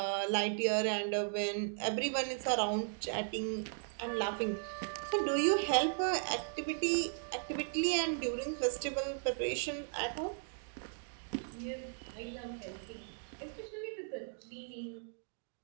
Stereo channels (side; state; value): left; silent; digital silence